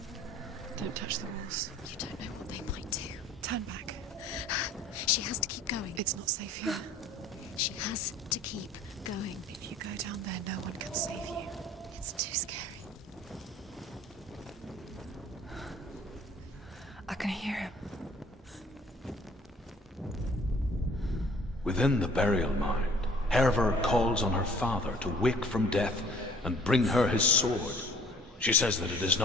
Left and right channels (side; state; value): both; normal; correlation 0.54